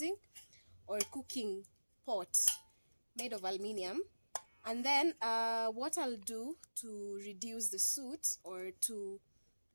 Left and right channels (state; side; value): inverted; both; correlation -1.00